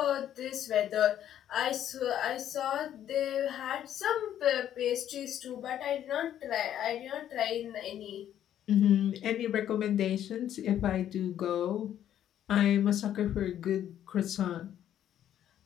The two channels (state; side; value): quieter; right; 10.8 dB